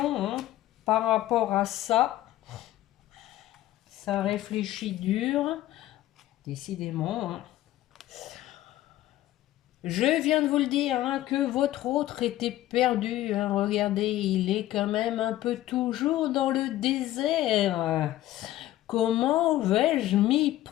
hein, par rapport à ça. Ça réfléchit dur, décidément. Hein. Je viens de vous le dire, hein, que votre autre était perdu. Hein. Regardez, il est quand même un peu toujours dans le désert. Comment vais-je m'y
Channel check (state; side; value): quieter; right; 14.7 dB